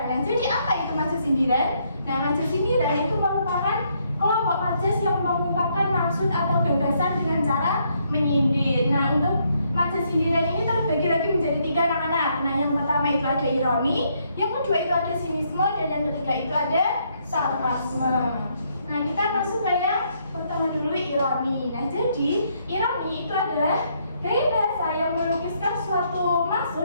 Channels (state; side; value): inverted; both; correlation -0.73